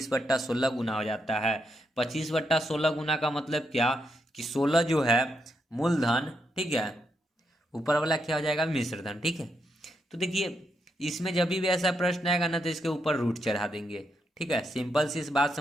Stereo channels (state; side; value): normal; both; correlation 0.80